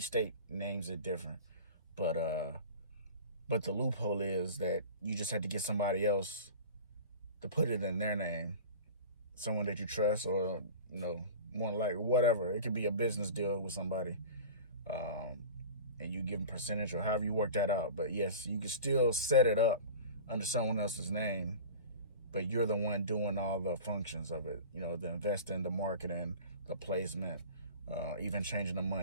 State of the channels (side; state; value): both; inverted; correlation -0.36